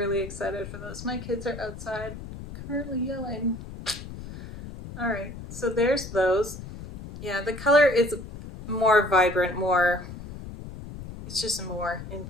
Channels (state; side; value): noise; left; rumble, 12 dB below the sound